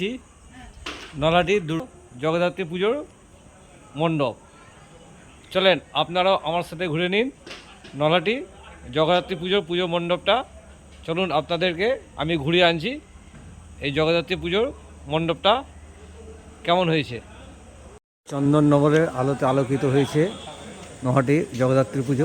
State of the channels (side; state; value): both; identical; correlation 1.00